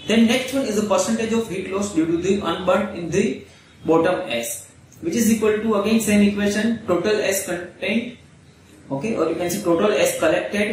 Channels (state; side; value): identical; both; correlation 1.00